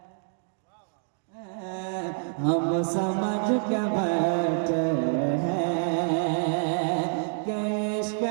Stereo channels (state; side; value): silent; left; 60 dB below the other